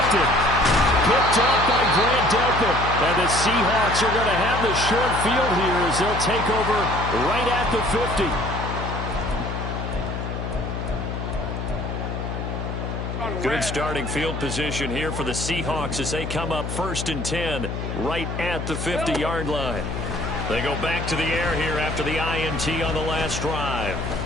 Picked off by Grant Delpit. And the Seahawks are going to have the short field here as they'll take over right at the 50. Good starting field position here for the Seahawks as they come up 1st and 10 right at the 50-yard line. They go back to the air here after the INT on the last drive.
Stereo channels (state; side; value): noise; left; hum, 4 dB below the sound